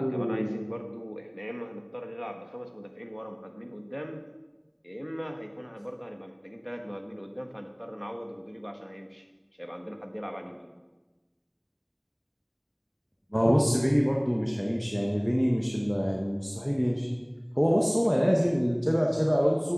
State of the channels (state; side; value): identical; both; correlation 1.00